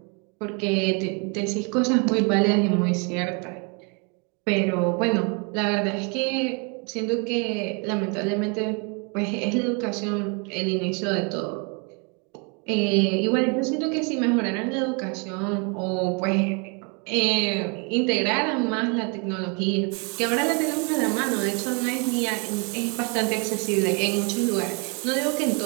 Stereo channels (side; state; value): left; quieter; 34.5 dB